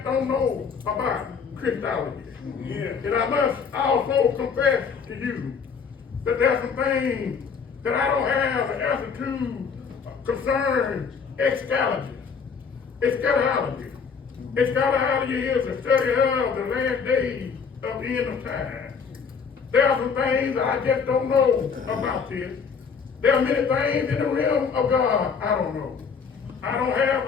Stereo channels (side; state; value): right; quieter; 5.9 dB